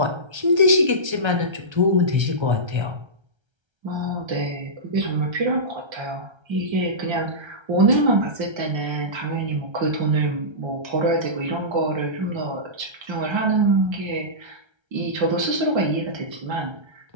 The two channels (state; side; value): late; left; 1.3 ms